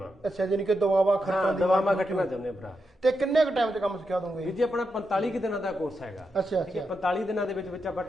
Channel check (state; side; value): normal; both; correlation 0.85